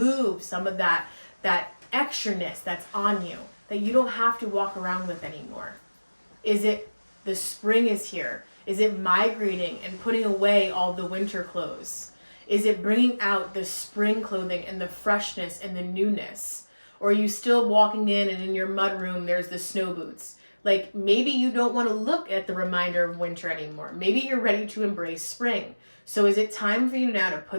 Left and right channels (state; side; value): inverted; both; correlation -1.00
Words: some of that extraness that's on you that you don't have to walk around with anymore. Is it the spring is here? Is it migrating and putting away all the winter clothes? Is it bringing out the spring clothing and the freshness and the newness? Or are you still walking in and in your mudroom there's the snow boots? Like maybe you don't want to look at the reminder of winter anymore. Maybe you're ready to embrace spring. So is it time for you now to